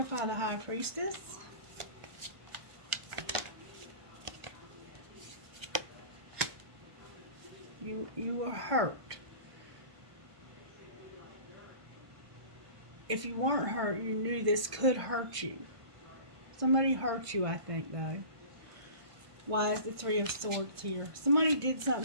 the High Priestess. You were hurt. If you weren't hurt, you knew this could hurt you. Somebody hurt you, I think, though. Why is the Three of Swords here? Somebody did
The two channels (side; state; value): left; late; 1.5 ms